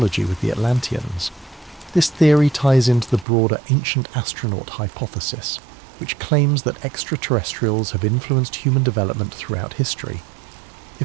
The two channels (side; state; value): left; drops out; at 3.2 s